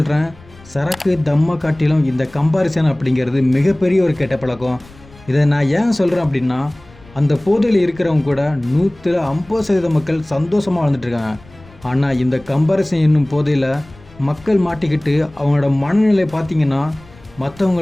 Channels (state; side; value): noise; left; rumble, 24 dB below the sound